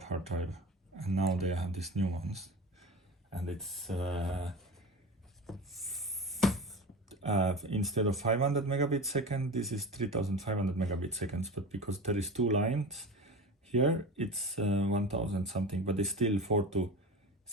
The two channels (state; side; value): normal; both; correlation 0.30